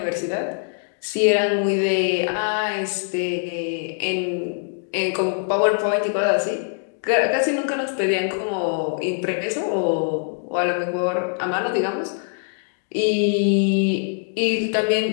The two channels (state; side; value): silent; right; digital silence